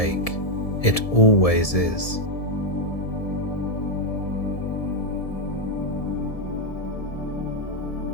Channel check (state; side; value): late; right; 1.7 ms